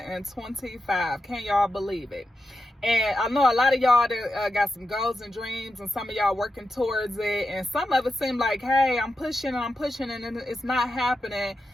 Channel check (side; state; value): both; normal; correlation 0.89